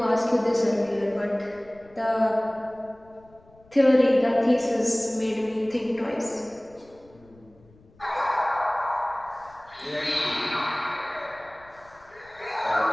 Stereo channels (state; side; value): noise; left; rumble, 28 dB below the sound